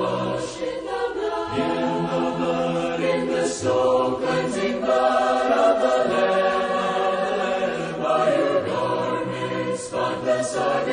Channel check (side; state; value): both; identical; correlation 1.00